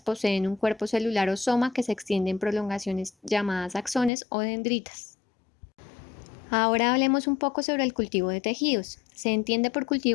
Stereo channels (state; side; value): drops out; right; at 4.1 s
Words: un cuerpo celular o soma que se extiende en prolongaciones llamadas axones o dendritas. Ahora hablemos un poco sobre el cultivo de tejidos. Se entiende por